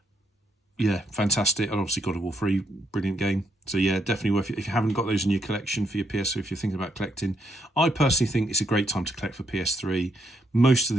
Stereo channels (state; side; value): normal; both; correlation 0.75